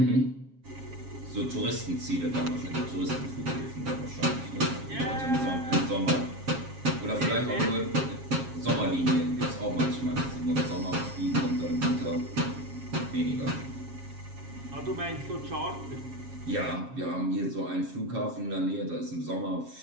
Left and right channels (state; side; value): late; left; 7.4 ms